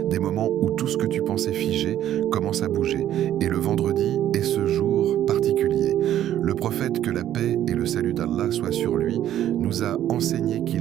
Des moments où tout ce que tu pensais figé commence à bouger. Et le vendredi est ce jour particulier. Le prophète, que la paix et le salut d'Allah soient sur lui, nous a enseigné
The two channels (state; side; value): quieter; left; 11.7 dB